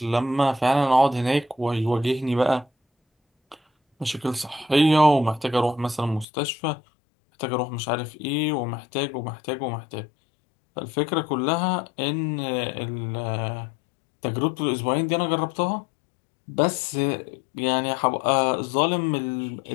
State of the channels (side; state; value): right; drops out; at 6.2 s